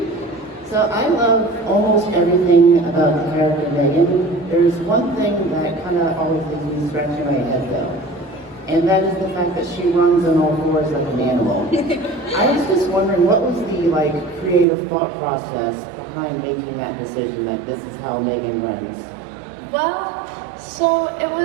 So I love almost everything about the character M3GAN. There's one thing that kind of always leaves me scratching my head though. And that is the fact that she runs on all fours like an animal. I was just wondering, what was the creative thought process behind making that decision, like this is how M3GAN runs? Well, so it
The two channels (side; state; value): left; drops out; at 14.7 s